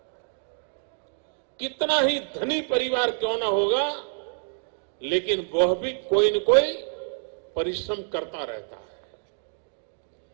कितना ही धनी परिवार क्यों ना होगा, लेकिन वह भी कोई न कोई परिश्रम करता रहता है।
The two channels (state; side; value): silent; left; digital silence